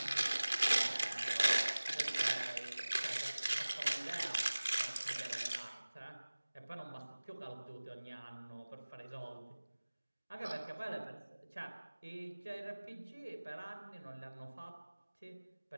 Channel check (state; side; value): inverted; both; correlation -1.00